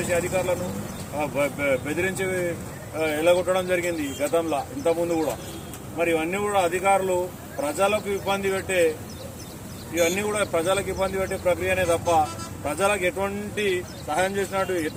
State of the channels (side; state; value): both; identical; correlation 1.00